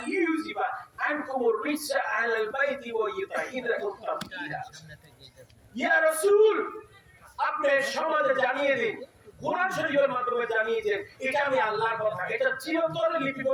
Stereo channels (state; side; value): identical; both; correlation 1.00